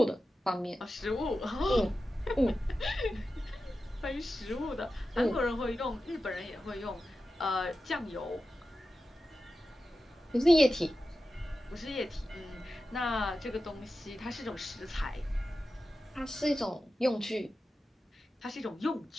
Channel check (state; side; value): normal; both; correlation 0.93